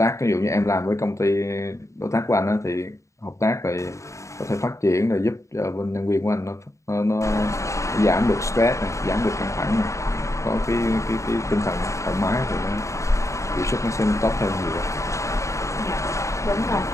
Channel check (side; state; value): right; late; 0.15 ms